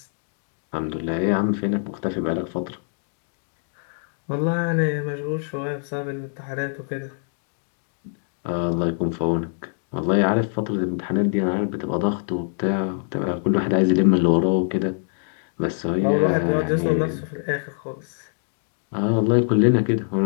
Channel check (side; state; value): right; silent; 63 dB below the other